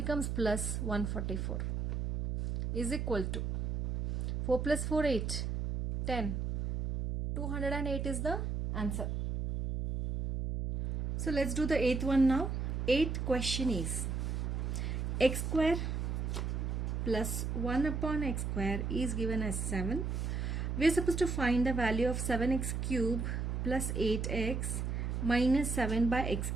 plus 144 is equal to 4 plus 4 8, 10. 208 is the answer. So let's do the eighth one now. Eighth question is x square plus 1 upon x square is given as 7. We are supposed to find the value of 7x cube plus 8x minus 7 by x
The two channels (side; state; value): right; noise; hum, 1 dB below the sound